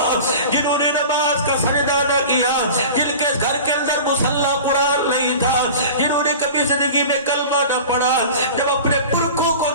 جنہوں نے نماز کا سجدہ نہ کیا، جن کے گھر کے اندر مصلی قرآن نہیں تھا، جنہوں نے کبھی زندگی میں کلمہ نہ پڑھا، جب اپنے پلکوں کو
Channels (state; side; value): inverted; both; correlation -0.36